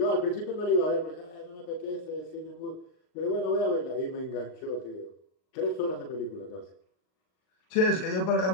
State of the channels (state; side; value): late; right; 39 ms